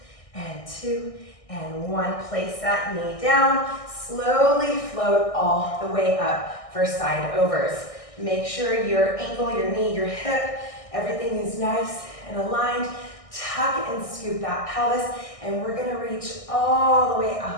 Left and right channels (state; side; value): late; right; 1.6 ms